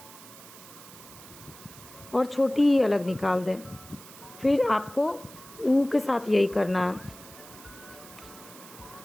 और छोटी ई अलग निकाल दें। फिर आपको ऊ के साथ यही करना है।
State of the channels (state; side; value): noise; right; hiss, 18 dB below the sound